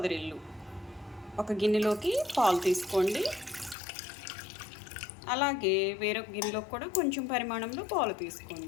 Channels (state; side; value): drops out; right; at 3.8 s